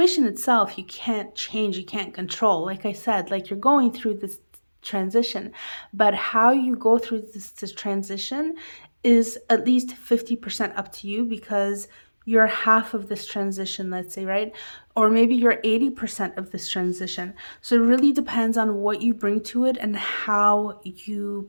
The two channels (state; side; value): inverted; both; correlation -1.00